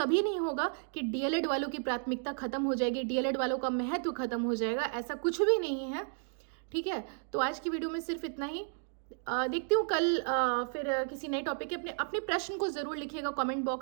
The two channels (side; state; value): left; silent; 56 dB below the other